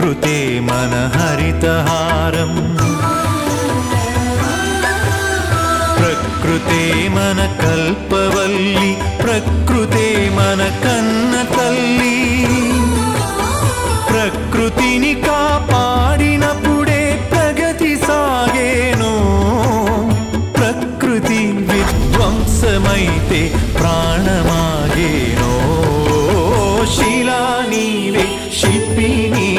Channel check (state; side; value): identical; both; correlation 1.00